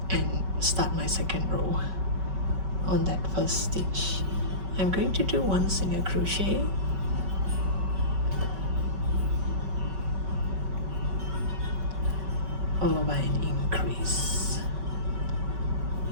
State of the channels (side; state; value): left; late; 5.3 ms